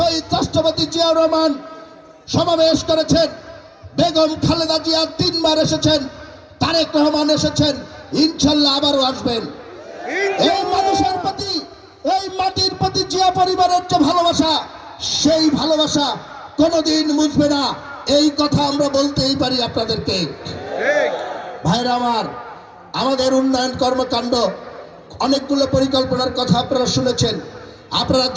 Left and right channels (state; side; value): identical; both; correlation 1.00